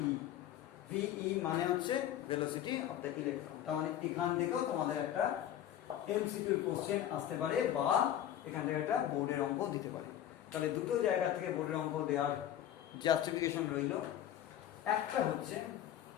ve মানে হচ্ছে velocity of the electron। তার মানে এখান থেকেও তোমাদের একটা এমসিকিউ কোশ্চেন আসতে পারে বা এখান থেকে একটা বোর্ডের অঙ্ক দিতে পারে। তাহলে দুটো জায়গা থেকে বোর্ডের অঙ্ক দেওয়ার জাস্টিফিকেশন রইল। একটা হচ্ছে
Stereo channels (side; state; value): right; quieter; 11.3 dB